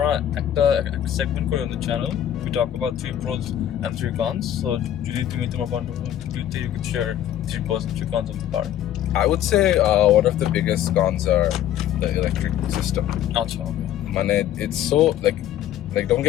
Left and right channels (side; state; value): right; quieter; 11.3 dB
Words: একটা segment করি on the channel we talk about 3 pros and 3 cons so যদি তুমি তোমার point of view you could share 3 pros and 3 cons of the car I would say one of the biggest cons are the electric system. আচ্ছা okay Mane, it's so like don't